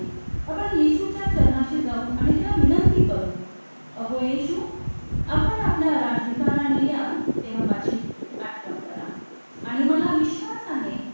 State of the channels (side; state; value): both; inverted; correlation -1.00